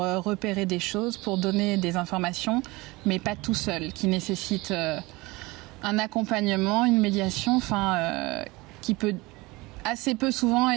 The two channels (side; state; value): left; quieter; 22.7 dB